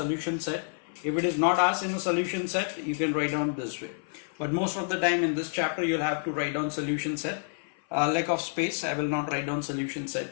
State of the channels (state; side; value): silent; right; 55 dB below the other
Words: set. If it is not asked in the solution set, you can write down this way. But most of the time in this chapter, you'll have to write down solution set. Lack of space, I will not write down solution